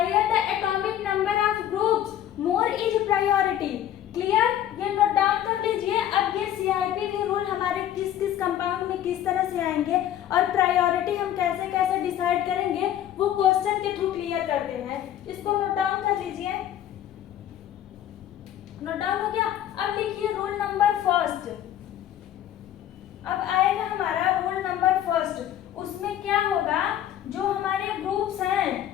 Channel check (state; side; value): quieter; right; 11.4 dB